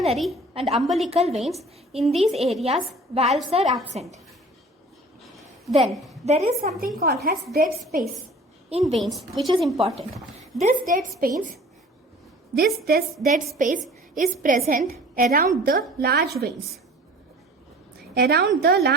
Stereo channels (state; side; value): normal; both; correlation 0.46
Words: and umbilical veins. In these areas, valves are absent. Then there is something called as dead space in veins, which is important. This dead space is present around the large veins. Around the